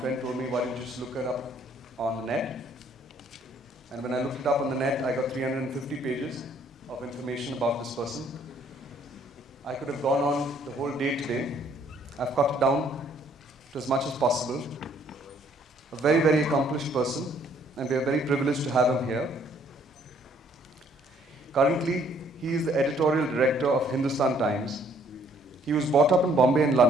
told me, why don't you just look it up on the net? And when I looked it up on the net, I got 350 pages of information about this person. I could have gone on the whole day today. I've cut it down to as much as possible. A very, very accomplished person, and we are very privileged to have him here. Currently, he is the editorial director of Hindustan Times. He was brought up in Bombay and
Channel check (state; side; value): normal; both; correlation 0.63